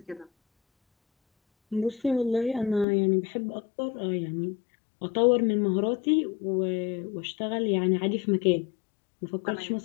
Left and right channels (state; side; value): drops out; right; at 2.9 s